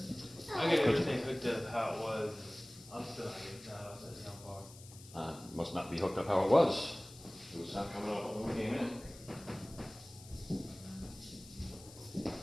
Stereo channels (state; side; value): noise; left; hiss, 19 dB below the sound